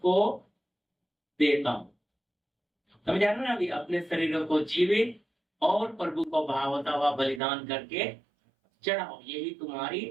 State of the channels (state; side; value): drops out; left; at 7.4 s